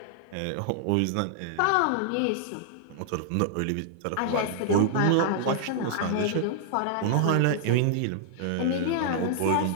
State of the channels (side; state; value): both; different; correlation -0.01